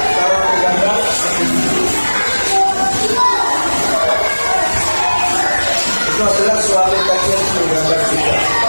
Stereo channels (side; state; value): both; inverted; correlation -1.00